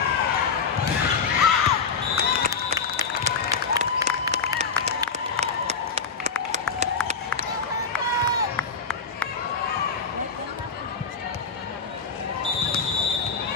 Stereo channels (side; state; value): right; quieter; 5.2 dB